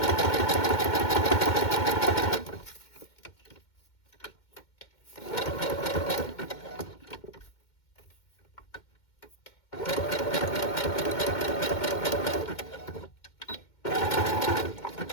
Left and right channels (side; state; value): right; late; 2.1 ms